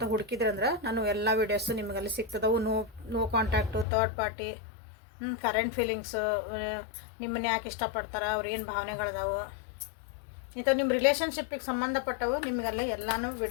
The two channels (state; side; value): drops out; right; at 3.9 s